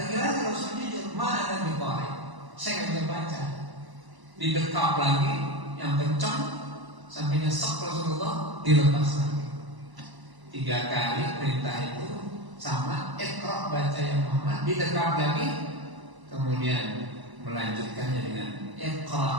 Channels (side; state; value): left; late; 1.0 ms